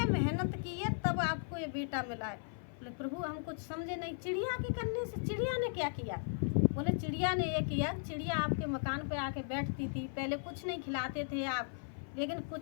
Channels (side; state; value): right; silent; 53 dB below the other